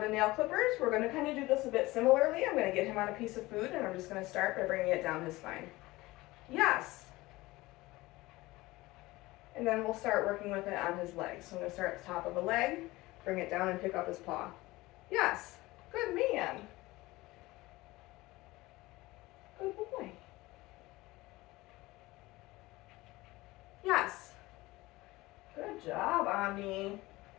nail clippers, we're going to kind of do this a bit similarly. I'm going to get him on a piece of food, and I'm just going to start by bringing it down his spine. Yes. And then we'll start working with it on his legs. So I'm going to start at the top of the leg, bring it down and pick up his paw. Yes, good man. Good boy. Yes. Good job, Omni.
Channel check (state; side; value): quieter; right; 19.9 dB